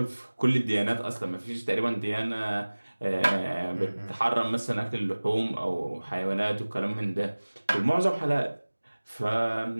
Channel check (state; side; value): inverted; both; correlation -1.00